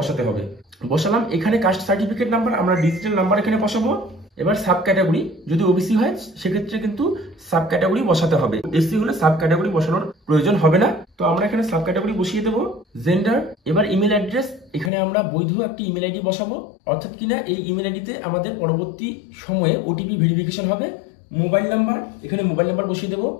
হবে। বসালাম। এখানে কাস্ট সার্টিফিকেট নাম্বার, আমরা ডিজিটাল নাম্বার এখানে বসাবো। এবার সাব ক্যাটাগরি, যদি ওবিসি হয় সেক্ষেত্রে কিন্তু সাব ক্যাটাগরি বসাতে হবে। এসসি হলে সাব ক্যাটাগরি বসানোর প্রয়োজন হবে না। তো আমরা এখানে সাব ক্যাটাগরি বসিয়ে দেবো। জেন্ডার, এবার ইমেল অ্যাড্রেস, এখানে আমরা বৈধ একটি ইমেল আইডি বসাবো, অর্থাৎ কিনা এই ইমেল আইডিতে আমাদের পরবর্তী সময়ে ওটিপি ভেরিফিকেশন হবে। মোবাইল নাম্বার, এখানে মোবাইল নাম্বার বসিয়ে দেবো।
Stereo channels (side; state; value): right; drops out; at 14.9 s